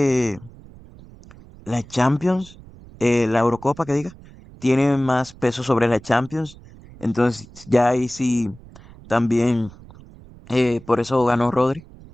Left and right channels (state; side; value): noise; right; rumble, 21 dB below the sound